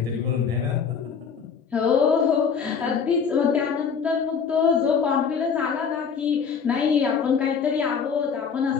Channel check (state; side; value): quieter; right; 6.4 dB